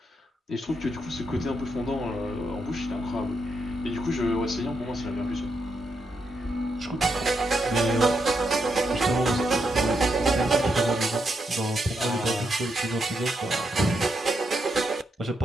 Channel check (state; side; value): normal; both; correlation 0.81